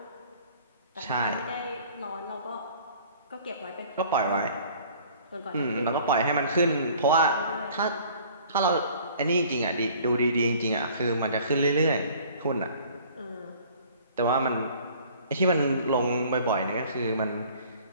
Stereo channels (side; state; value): both; inverted; correlation -0.52